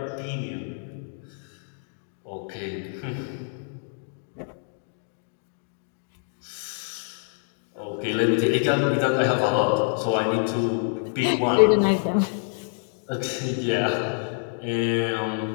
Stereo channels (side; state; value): right; silent; digital silence